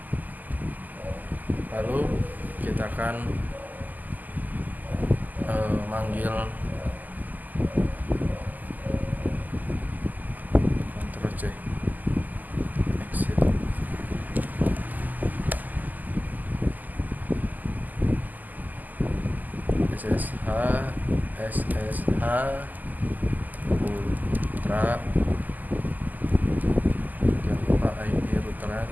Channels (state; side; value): late; left; 0.083 ms